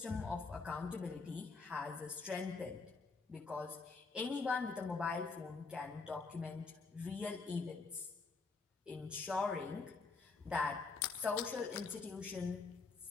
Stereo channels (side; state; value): right; quieter; 4.3 dB